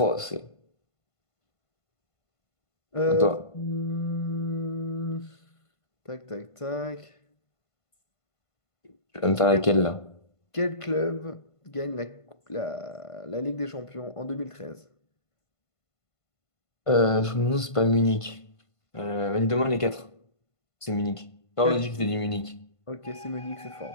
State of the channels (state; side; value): late; right; 1.5 ms